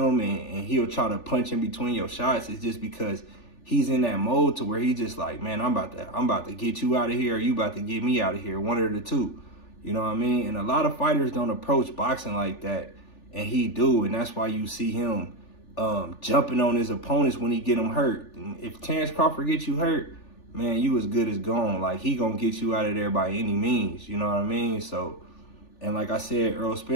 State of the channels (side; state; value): right; late; 3.4 ms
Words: and he'll try to punch in between your shots. It's just because he's in that mode to where he just like, man, I'm about to get you out of here, or you about to get me out of here, one of the two. You know what I mean? And a lot of fighters don't approach boxing like that, and he do. And that's why you see him jumping on his opponents when he get them hurt. And if Terence Crawford gets you hurt, man, you as good as gone. Like, he gonna get you out of there by any means. You know what I mean? So, and like I said, Errol